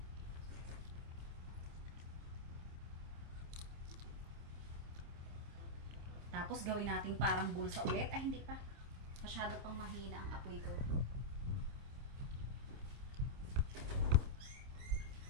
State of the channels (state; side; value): late; left; 27 ms